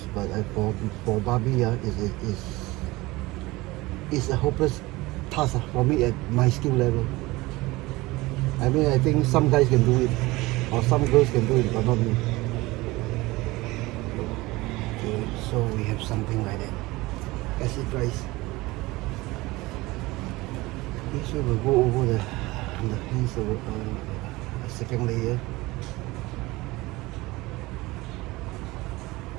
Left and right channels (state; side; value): quieter; left; 20.8 dB